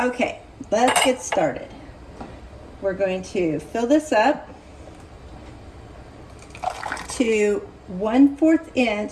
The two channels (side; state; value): both; identical; correlation 1.00